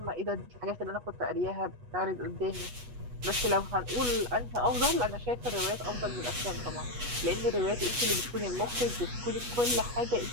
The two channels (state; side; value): late; left; 8.2 ms